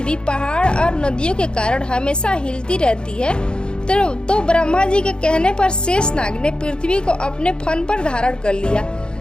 पहाड़ और नदियों के कारण हमेशा हिलती रहती है। तो ब्रह्मा जी के कहने पर शेषनाग ने पृथ्वी को अपने फन पर धारण कर लिया।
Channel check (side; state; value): right; late; 0.050 ms